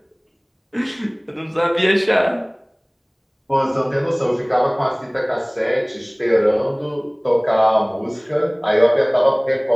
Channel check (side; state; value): both; identical; correlation 1.00